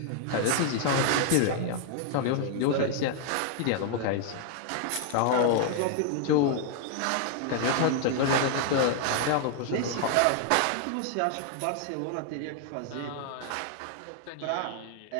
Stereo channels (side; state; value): both; different; correlation 0.00